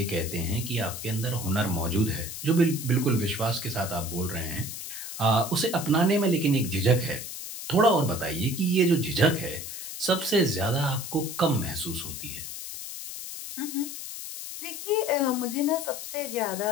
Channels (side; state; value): left; noise; hiss, 8 dB below the sound